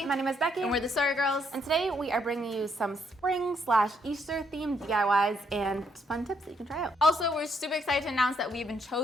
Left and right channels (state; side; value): normal; both; correlation 0.73